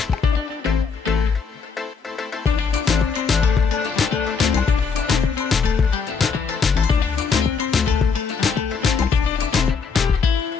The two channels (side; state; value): right; quieter; 5.4 dB